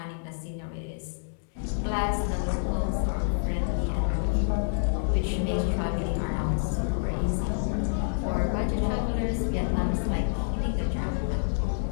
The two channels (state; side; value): silent; right; digital silence